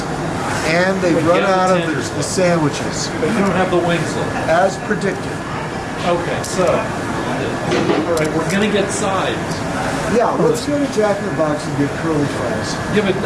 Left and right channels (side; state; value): both; identical; correlation 1.00